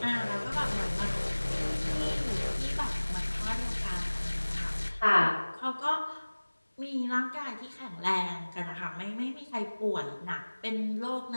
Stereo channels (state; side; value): inverted; both; correlation -1.00